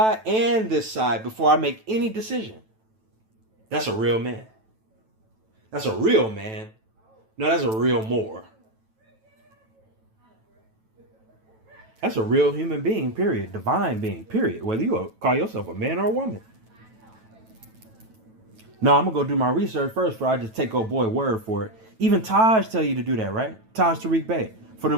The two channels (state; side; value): late; left; 9.1 ms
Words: and this side before I make any decision. That's a real man. That's a real man. No, that's a real Moor. That's a real human being, period. Divine being, period. Whether you call yourself a man or a woman. No, I'm going to go do my research first before I just take old boy word for it. Even Taj tell you to do that, right? Taj Tariq Bey. For the